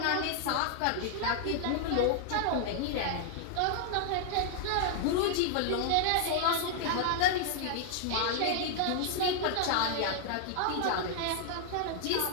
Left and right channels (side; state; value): both; different; correlation 0.00